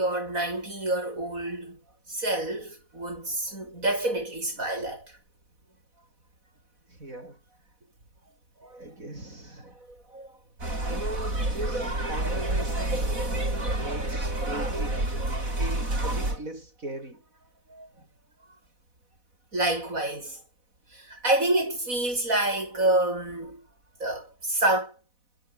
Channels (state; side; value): late; left; 4.1 ms